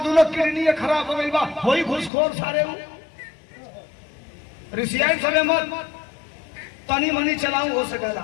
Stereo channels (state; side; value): drops out; right; at 2.1 s